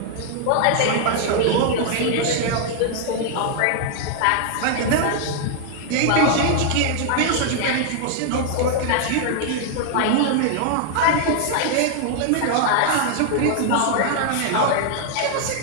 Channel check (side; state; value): both; different; correlation 0.00